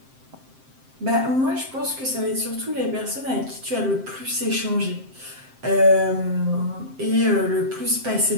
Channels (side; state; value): left; late; 7.6 ms